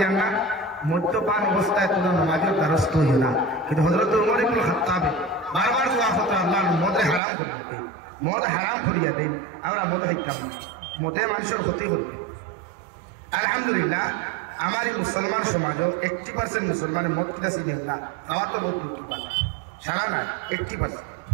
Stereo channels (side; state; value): left; drops out; at 7.2 s